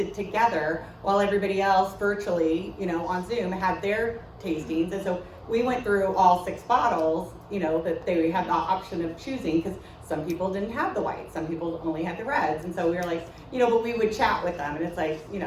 together while everybody else virtually, on Zoom had their tastings. And so we went through all 6 bottles, that they had the option of choosing, because some people didn't have the whites, some people only had the reds. And so we were like, but we would chat with them, and it's like,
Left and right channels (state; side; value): identical; both; correlation 1.00